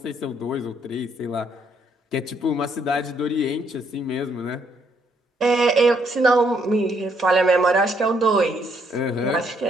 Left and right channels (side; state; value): both; normal; correlation 0.71